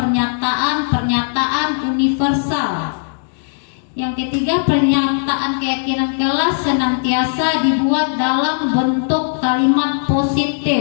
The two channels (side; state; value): right; silent; digital silence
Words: universal. Yang ketiga, pernyataan keyakinan kelas senantiasa dibuat dalam bentuk kalimat